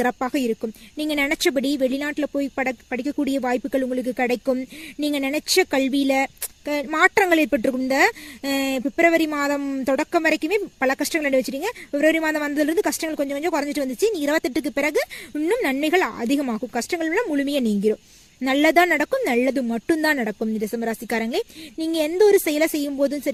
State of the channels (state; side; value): identical; both; correlation 1.00